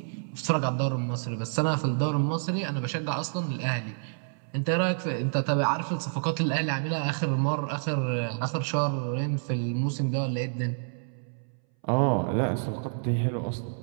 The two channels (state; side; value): silent; left; 59 dB below the other